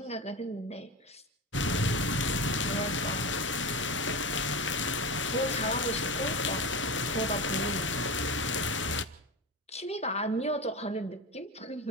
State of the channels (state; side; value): normal; both; correlation 0.23